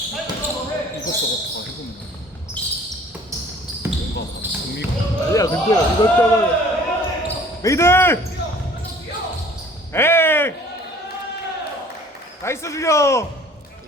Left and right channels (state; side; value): normal; both; correlation 0.51